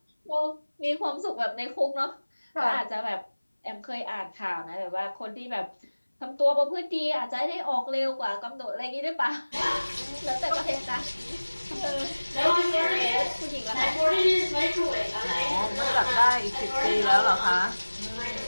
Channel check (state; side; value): inverted; both; correlation -1.00